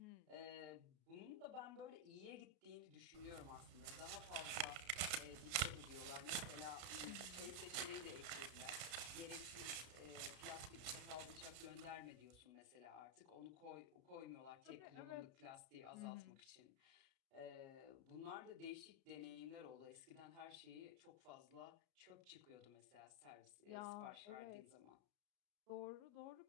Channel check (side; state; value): left; late; 33 ms